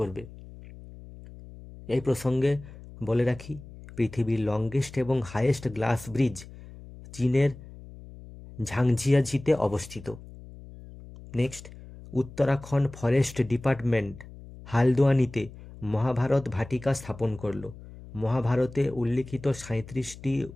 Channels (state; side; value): noise; left; hum, 17 dB below the sound